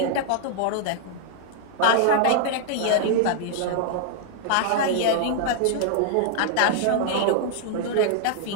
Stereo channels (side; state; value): both; different; correlation -0.01